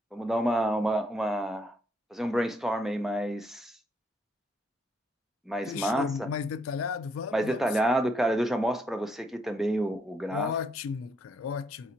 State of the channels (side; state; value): both; normal; correlation 0.73